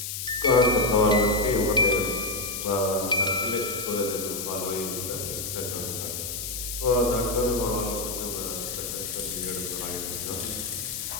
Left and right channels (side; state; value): left; noise; hiss, 5 dB below the sound